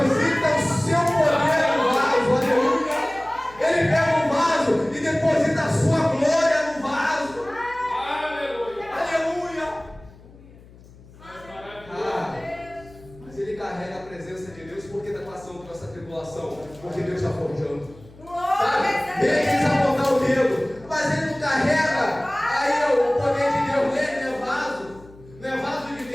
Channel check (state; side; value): noise; left; hum, 22 dB below the sound